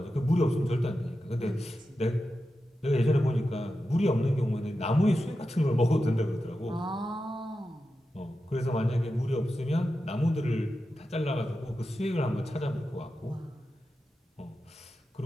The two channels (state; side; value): normal; both; correlation 0.91